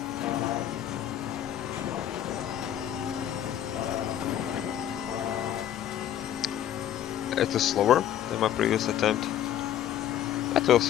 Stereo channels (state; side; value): quieter; right; 10.8 dB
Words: It is slower than my previous attempt. But we'll